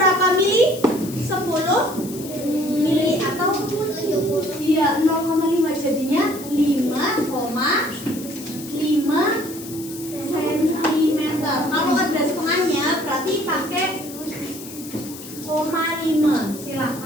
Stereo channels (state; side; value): noise; left; hiss, 14 dB below the sound